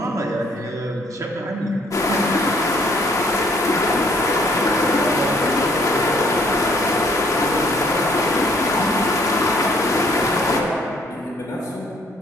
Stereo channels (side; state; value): both; normal; correlation 0.63